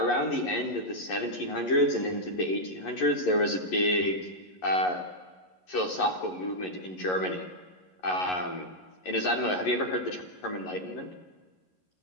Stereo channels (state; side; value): late; right; 11 ms